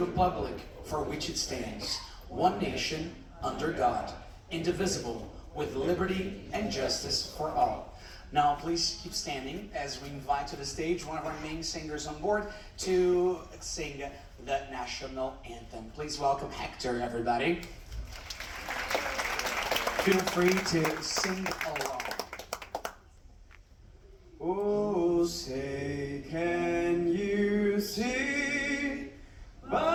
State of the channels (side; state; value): both; identical; correlation 1.00